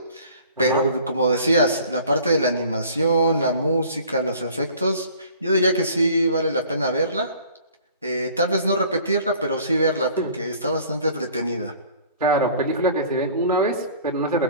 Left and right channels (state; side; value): inverted; both; correlation -0.50